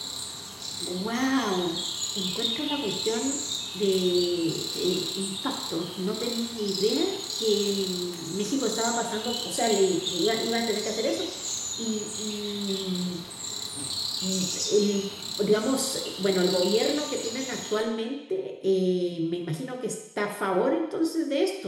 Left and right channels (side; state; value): both; identical; correlation 1.00